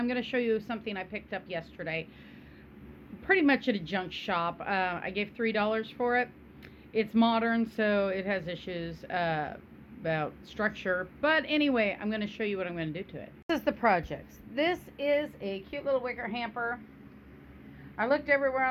going to show you something I picked up yesterday, pretty much at a junk shop. I gave $3 for it. It's modern, so it has issues about structure, but anyway, I'm going to show you what I'm going to do to it. This is the project. This is a cute little wicker hamper. I looked everywhere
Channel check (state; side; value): identical; both; correlation 1.00